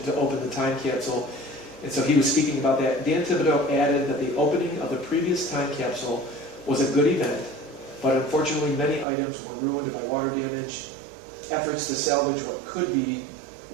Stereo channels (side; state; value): left; drops out; at 9.1 s